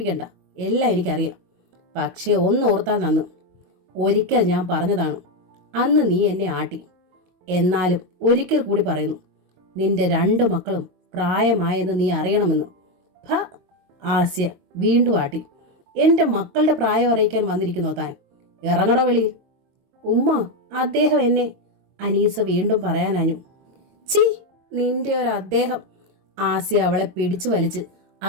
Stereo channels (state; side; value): late; left; 22 ms